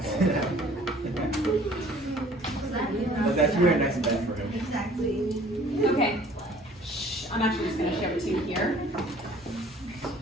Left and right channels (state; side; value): normal; both; correlation 0.53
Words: But that's really nice and bad for him. Okay. Shh, I'm actually just gonna show it to you here.